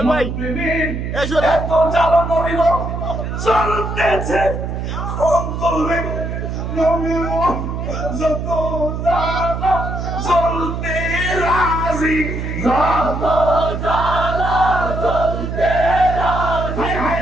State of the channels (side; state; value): right; noise; hum, 4 dB below the sound